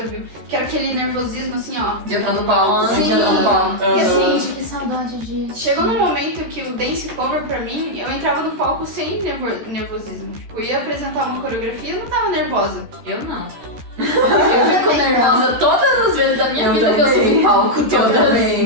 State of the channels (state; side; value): late; left; 13 ms